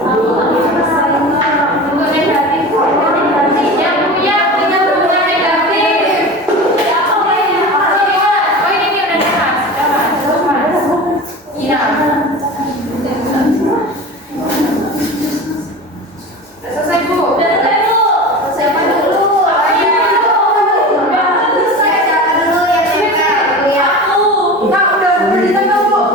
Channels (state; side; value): normal; both; correlation 0.32